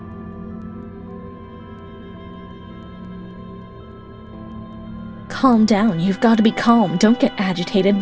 Calm down. You've got to be calm. Don't get agitated.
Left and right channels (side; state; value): both; identical; correlation 1.00